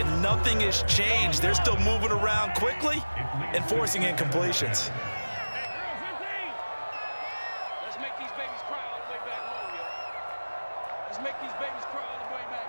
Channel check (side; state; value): both; inverted; correlation -1.00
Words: nothing has changed. They're still moving around quickly and forcing incompletions. Let's make these babies cry all the way back home, yo. Let's make these babies cry all the way